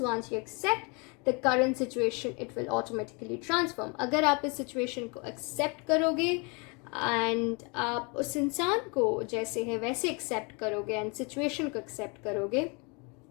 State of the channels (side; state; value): right; quieter; 31.8 dB